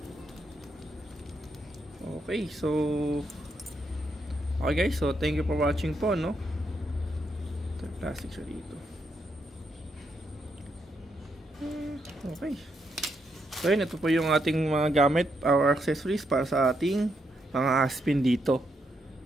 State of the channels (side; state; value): both; normal; correlation 0.79